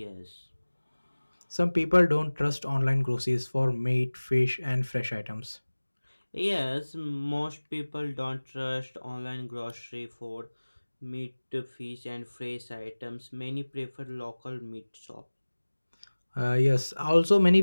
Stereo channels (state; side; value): inverted; both; correlation -1.00